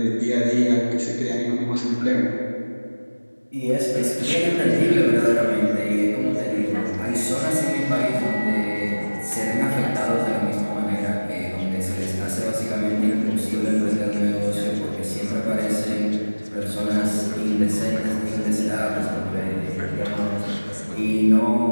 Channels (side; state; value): both; inverted; correlation -1.00